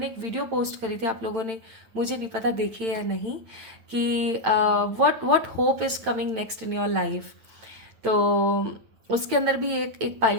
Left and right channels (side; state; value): left; late; 8.9 ms